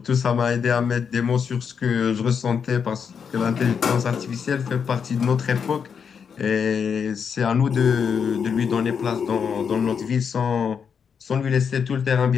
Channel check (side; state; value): right; quieter; 6.7 dB